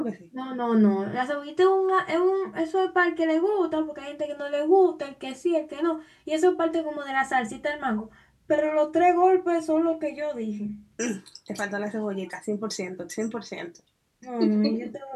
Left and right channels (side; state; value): both; identical; correlation 1.00